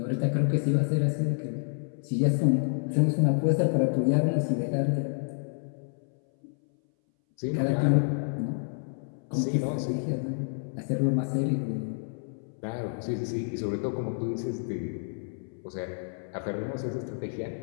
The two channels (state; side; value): silent; right; 59 dB below the other